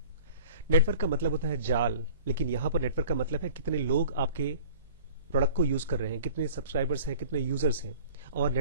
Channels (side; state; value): both; inverted; correlation -0.45